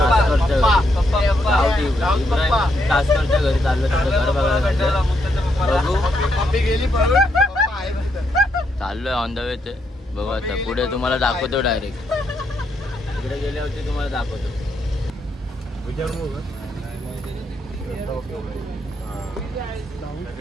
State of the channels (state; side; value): normal; both; correlation 0.78